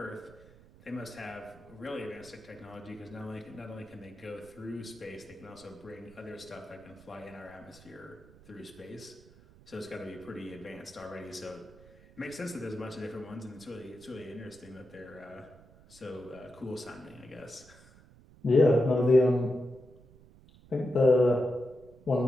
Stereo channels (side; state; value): right; noise; rumble, 23 dB below the sound